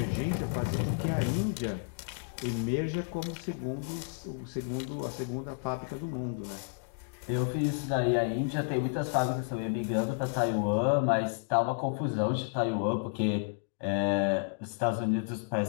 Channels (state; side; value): silent; right; digital silence